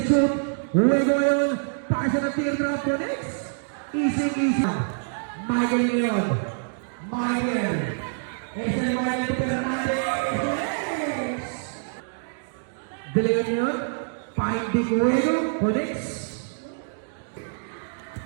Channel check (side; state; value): left; silent; digital silence